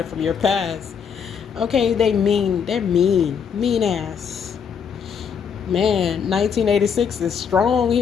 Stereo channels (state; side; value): quieter; right; 7.0 dB